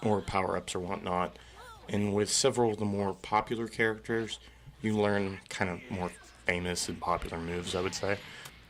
or power-ups or whatnot. And with several of the more popular characters, you learn kind of more famous and popular moves, I would say.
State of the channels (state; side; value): identical; both; correlation 1.00